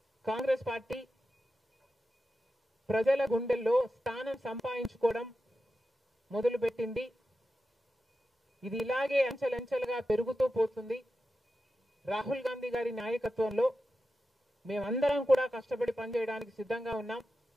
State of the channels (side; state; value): both; normal; correlation 0.91